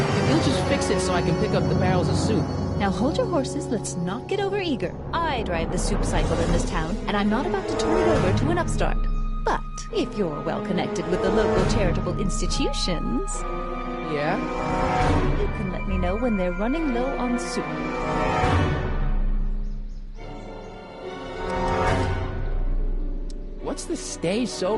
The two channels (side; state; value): both; identical; correlation 1.00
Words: If you'll just fix it so I can pick up the barrels of soup. Now hold your horses, let's not get over-eager. I drive the soup cycle in this town, and I'm not about to turn it over to an upstart. But if you're well-connected with the local charitable institutions... Yeah? You can let me know when they're running low on soup. What's the Stay